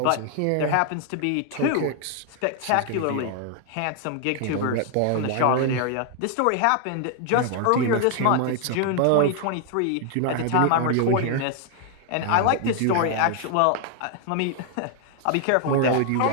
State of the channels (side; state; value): both; different; correlation 0.00